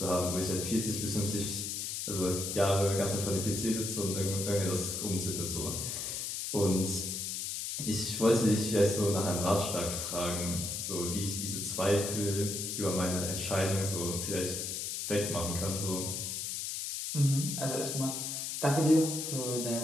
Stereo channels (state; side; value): noise; left; hiss, 3 dB below the sound